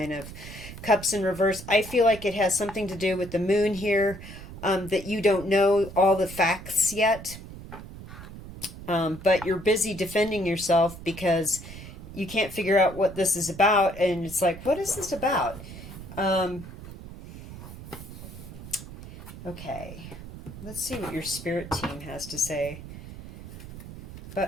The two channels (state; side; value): noise; right; rumble, 13 dB below the sound